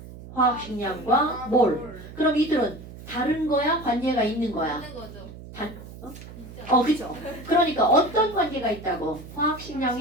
화학식량과 몰. 그럼 이들은 다른 거야? 관계가 있는 거야? 있는 거죠. 어, 그죠? 그러니까 어떤 관계가 있다고?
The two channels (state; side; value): noise; right; hum, 15 dB below the sound